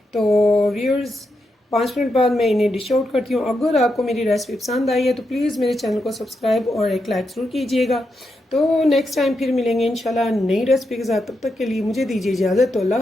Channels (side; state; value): both; normal; correlation 0.84